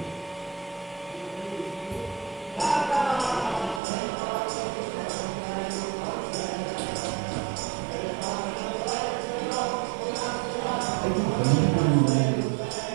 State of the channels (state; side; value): drops out; left; at 3.8 s